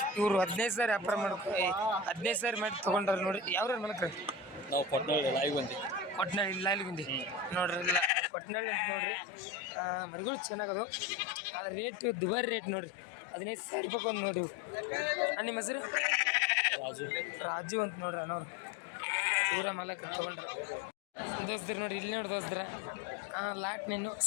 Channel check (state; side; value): drops out; right; at 8.1 s